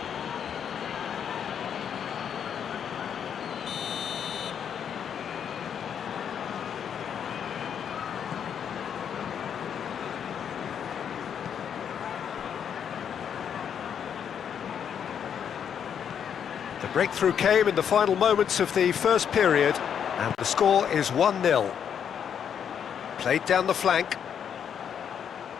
The breakthrough came in the final moments of the first period, and the score is 1-0. Played down the flank.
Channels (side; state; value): right; quieter; 8.2 dB